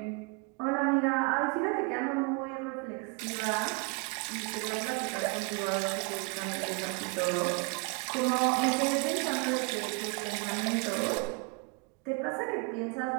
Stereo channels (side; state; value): left; quieter; 31.1 dB